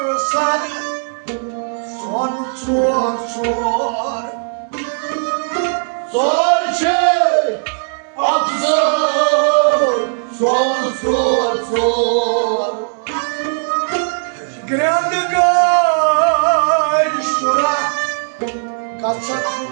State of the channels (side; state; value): left; silent; 68 dB below the other